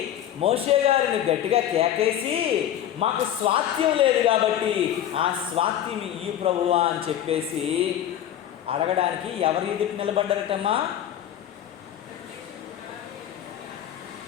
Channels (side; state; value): right; quieter; 11.0 dB